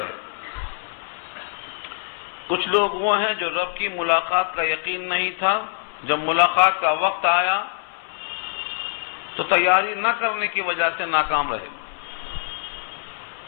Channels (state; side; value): silent; right; 63 dB below the other